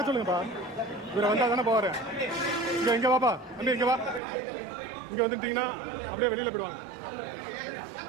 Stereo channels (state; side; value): drops out; left; at 4.2 s